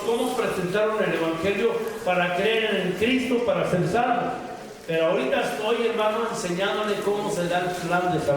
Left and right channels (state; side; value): identical; both; correlation 1.00